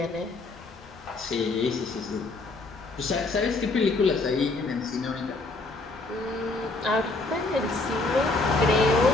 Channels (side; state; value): right; quieter; 3.3 dB